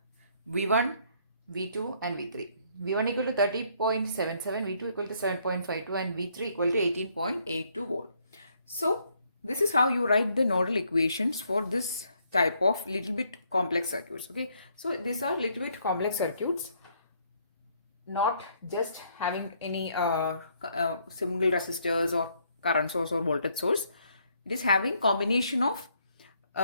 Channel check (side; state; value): both; inverted; correlation -0.69